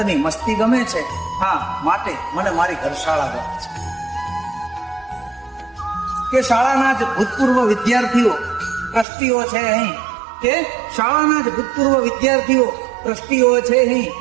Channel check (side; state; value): left; drops out; at 9.1 s